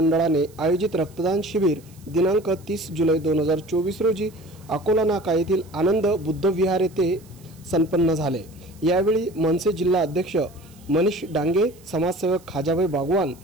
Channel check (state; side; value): noise; right; hiss, 27 dB below the sound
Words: आयोजित रक्तदान शिबिर दिनांक 30 जुलै 2024 रोजी अकोला नाका येथील आनंद बुद्ध विहार येथे संपन्न झाले। यावेळी मनसे जिल्हा अध्यक्ष मनीष डांगे, समाजसेवक खाजाभाई बागवान,